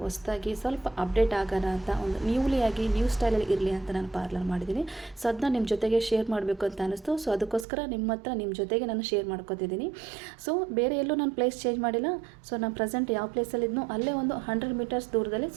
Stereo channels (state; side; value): drops out; left; at 7.7 s